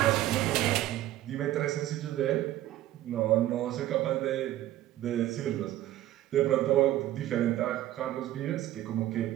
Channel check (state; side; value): quieter; left; 14.1 dB